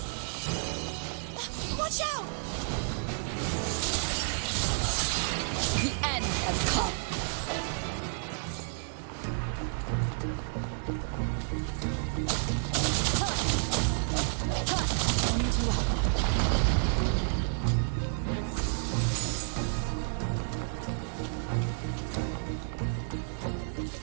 Watch out! The end has come. I need you out now.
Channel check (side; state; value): left; silent; digital silence